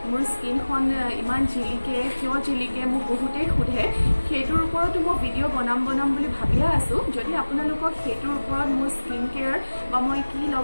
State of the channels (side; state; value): both; inverted; correlation -1.00